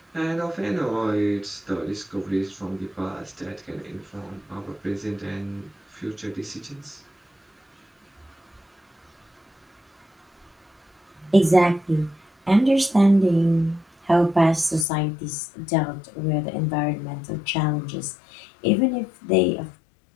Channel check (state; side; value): drops out; right; at 14.9 s